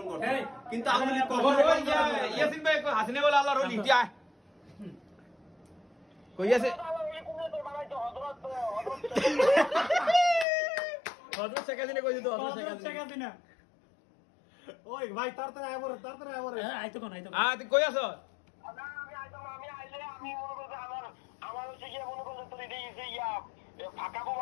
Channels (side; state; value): right; drops out; at 10.5 s